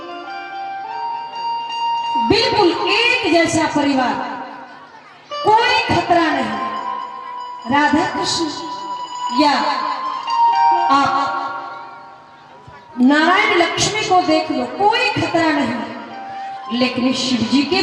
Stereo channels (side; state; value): both; identical; correlation 1.00